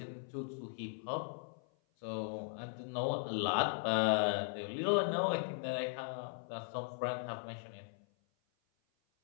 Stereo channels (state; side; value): silent; right; 52 dB below the other